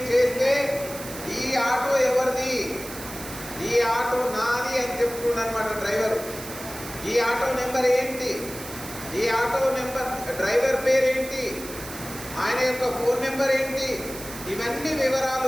చేస్తే ఈ ఆటో ఎవరిది, ఈ ఆటో నాది అని చెప్తున్నారన్నమాట డ్రైవర్. ఈ ఆటో నెంబర్ ఏంటి, ఈ ఆటో నెంబర్ డ్రైవర్ పేరేంటి, ఆయన యొక్క ఫోన్ నెంబర్ ఏంటి, ఇవన్నీ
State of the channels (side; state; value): right; noise; hiss, 12 dB below the sound